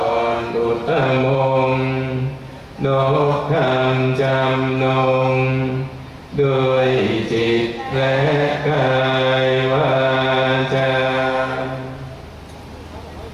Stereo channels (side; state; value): both; identical; correlation 1.00